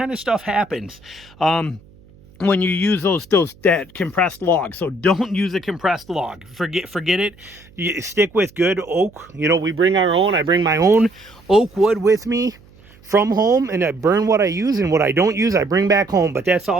of stuff happens when you use that compressed log. So don't use a compressed log. Forget it. You stick with good oak. We bring our own. I bring my own oak wood with me from home, and I burn what I use, and what I don't use I bring back home. But that's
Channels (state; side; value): noise; right; hum, 26 dB below the sound